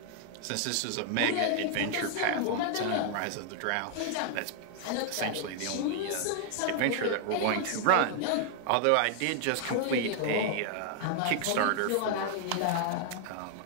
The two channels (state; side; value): different; both; correlation 0.00